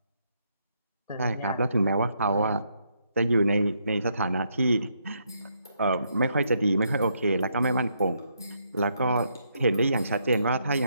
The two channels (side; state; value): both; inverted; correlation -0.76